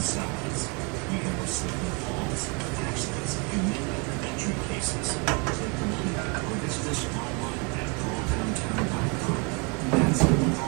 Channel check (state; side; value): quieter; left; 32.5 dB